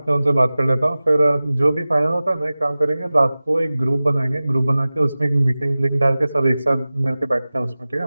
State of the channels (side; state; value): both; inverted; correlation -0.97